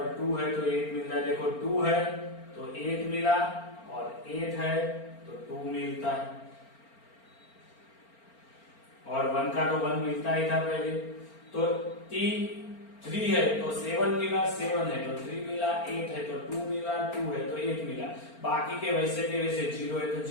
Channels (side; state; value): right; late; 4.4 ms